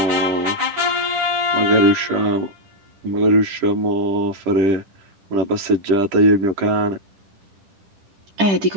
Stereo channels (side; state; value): left; late; 10 ms